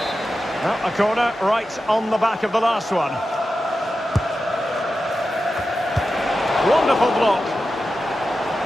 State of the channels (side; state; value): both; normal; correlation 0.92